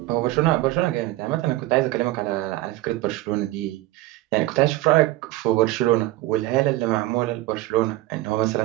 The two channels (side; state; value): left; quieter; 17.2 dB